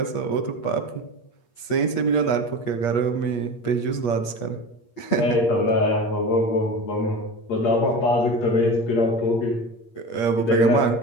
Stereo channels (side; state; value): right; late; 8.5 ms